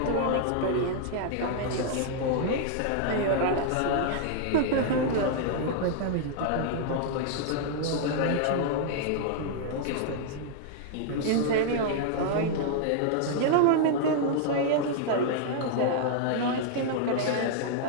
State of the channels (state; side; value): different; both; correlation -0.01